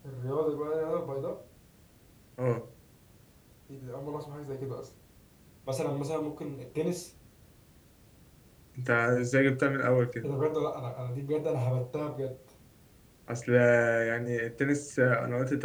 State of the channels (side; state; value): both; identical; correlation 1.00